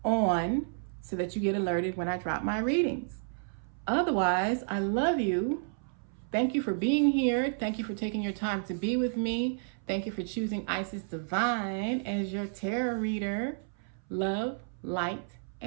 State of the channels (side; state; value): left; silent; 57 dB below the other